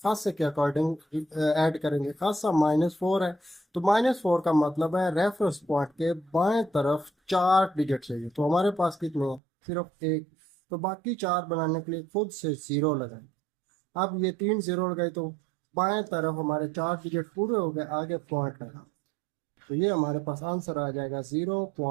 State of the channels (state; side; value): drops out; left; at 9.4 s